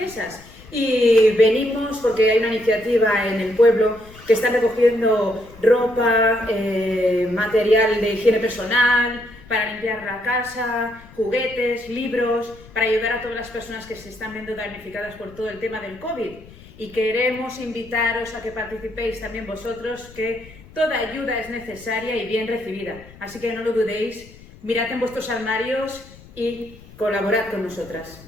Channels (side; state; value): left; noise; rumble, 21 dB below the sound